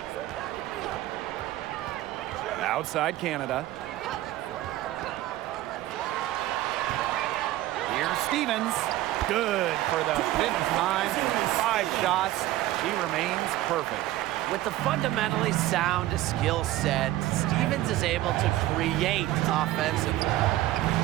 Outside Canada. Here's Stevens. Good for the 5th time. 5 shots. She remains perfect. With the fundamentally sound skill set, Stevens is able to create offensively.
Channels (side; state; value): left; quieter; 15.5 dB